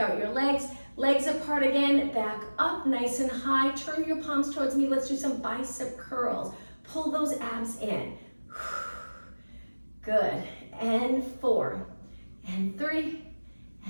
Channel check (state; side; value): inverted; both; correlation -1.00